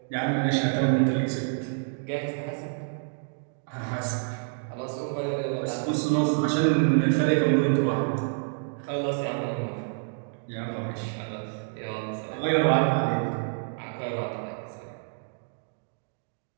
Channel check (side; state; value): left; silent; 59 dB below the other